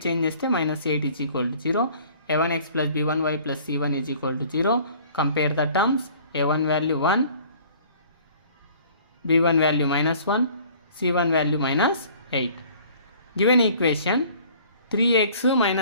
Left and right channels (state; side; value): inverted; both; correlation -0.52